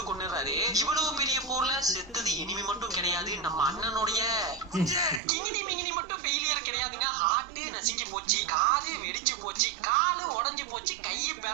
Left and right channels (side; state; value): left; drops out; at 5.2 s